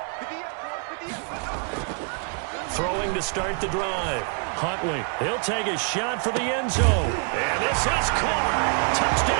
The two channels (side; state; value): left; quieter; 39.3 dB